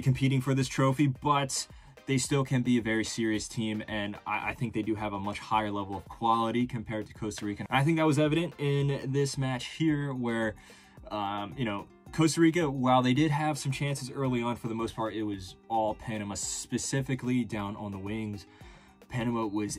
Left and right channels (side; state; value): both; identical; correlation 1.00